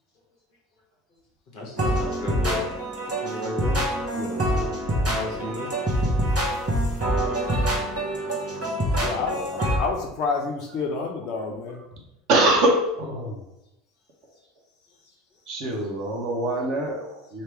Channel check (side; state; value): both; normal; correlation 0.44